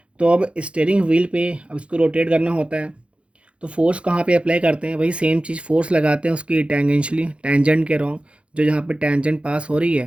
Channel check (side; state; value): left; late; 0.060 ms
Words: तो अब स्टीयरिंग व्हील पे अब इसको रोटेट करना होता है, तो फोर्स कहाँ पे अप्लाई करते हैं? वही सेम चीज़, फोर्स लगाते हैं उसकी टेंजेंशली, टेंजेंट के रॉन्ग, जो जहाँ पे टेंजेंट पास हो रही